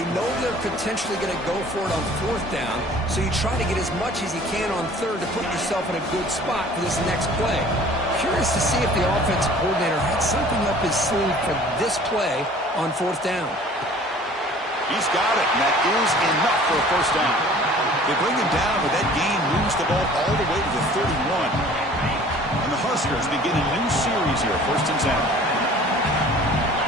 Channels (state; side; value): normal; both; correlation 0.49